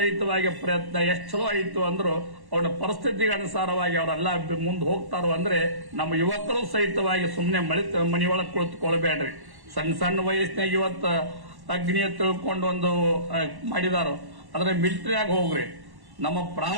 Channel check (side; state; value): left; late; 1.1 ms